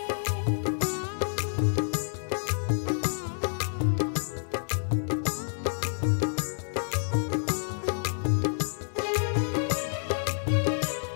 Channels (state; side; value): silent; right; digital silence